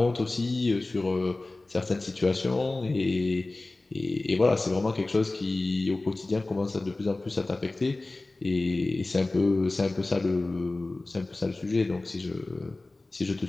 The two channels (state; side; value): quieter; right; 3.0 dB